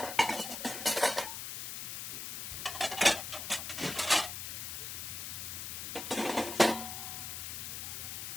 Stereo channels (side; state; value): left; noise; hiss, 5 dB below the sound